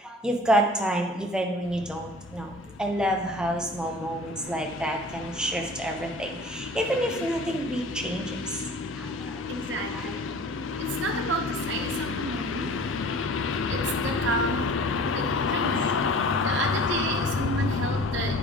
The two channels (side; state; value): both; normal; correlation 0.44